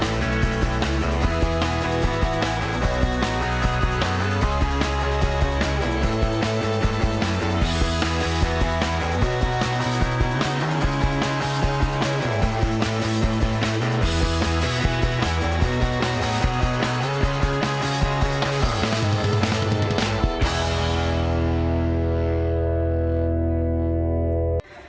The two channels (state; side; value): identical; both; correlation 1.00